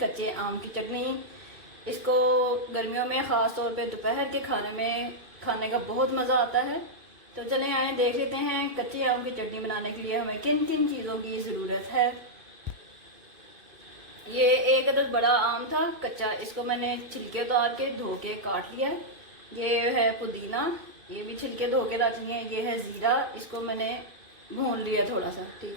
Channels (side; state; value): left; late; 2.5 ms